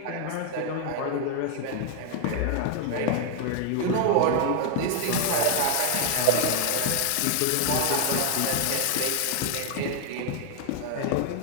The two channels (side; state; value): both; different; correlation 0.00